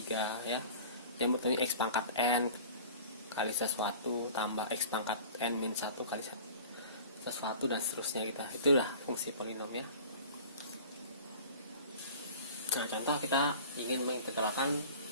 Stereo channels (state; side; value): inverted; both; correlation -0.41